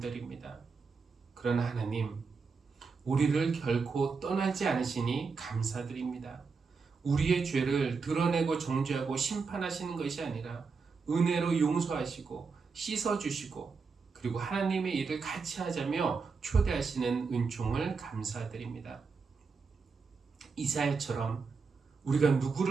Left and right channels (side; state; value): left; quieter; 4.9 dB